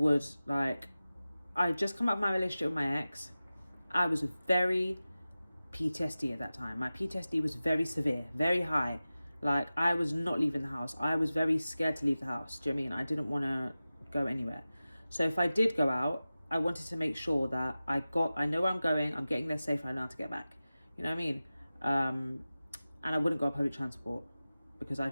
like, I just come out of my relationship with my ex. I was very PTSD at that time. My PTSD was very severe, very high. Like, I was not leaving the house. I was very scared to leave the house. Do you know what I mean? I didn't want to go anywhere. So if I did go out, I wanted to make sure that I know where I'm going, I'm getting there safe, I know how to get back. You know what I mean? And I wouldn't go on public transport because I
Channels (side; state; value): both; inverted; correlation -0.96